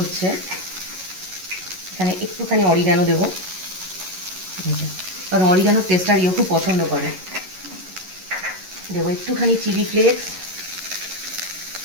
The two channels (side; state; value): left; late; 11 ms